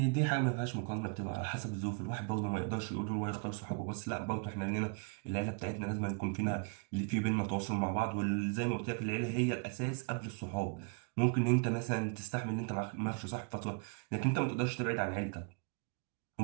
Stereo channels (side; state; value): left; quieter; 37.0 dB